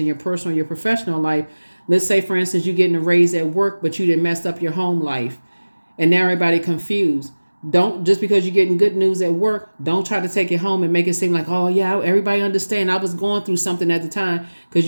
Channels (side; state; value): both; inverted; correlation -1.00